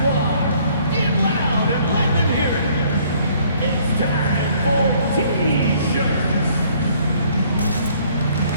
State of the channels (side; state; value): both; inverted; correlation -0.61